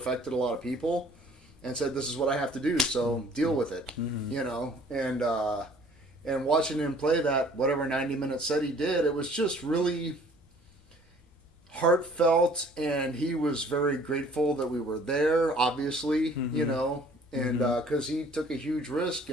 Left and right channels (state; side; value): normal; both; correlation 0.55